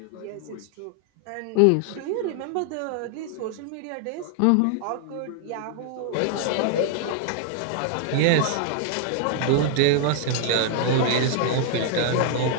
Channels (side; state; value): both; different; correlation 0.00